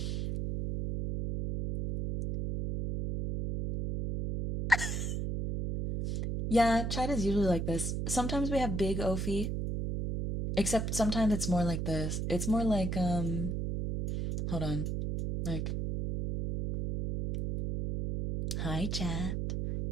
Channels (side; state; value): right; noise; hum, 1 dB below the sound